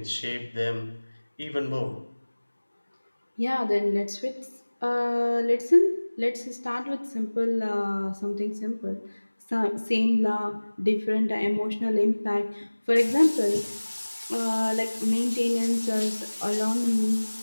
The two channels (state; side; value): inverted; both; correlation -1.00